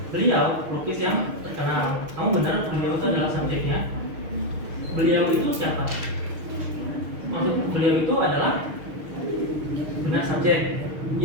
Beliau lukis yang terkenal. Kamu benar, beliau itu adalah subjeknya. Beliau itu siapa? Maksud beliau itu adalah benar subjek.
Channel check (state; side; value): late; left; 6.4 ms